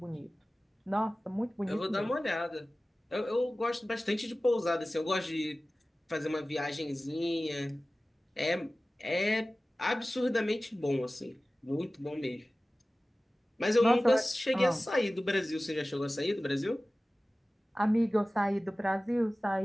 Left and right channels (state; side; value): normal; both; correlation 0.97